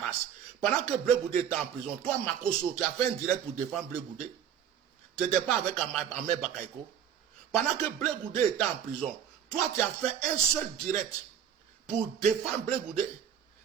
Pendant que Blé Goudé était en prison, toi, Makoso, tu as fait un direct pour défendre Blé Goudé. Tu n'étais pas avec Ahmed Bakaïko. Pendant que Blé Goudé était en prison, toi, tu as fait un seul direct pour défendre Blé Goudé.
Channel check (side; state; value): left; quieter; 9.0 dB